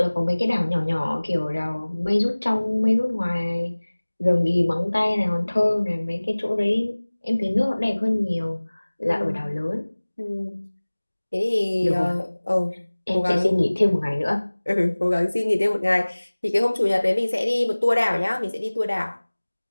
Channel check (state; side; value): inverted; both; correlation -1.00